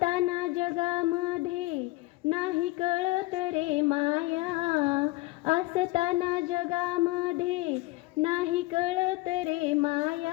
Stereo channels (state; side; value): quieter; right; 20.6 dB